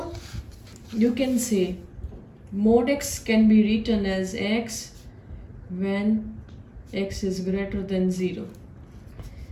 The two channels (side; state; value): both; identical; correlation 1.00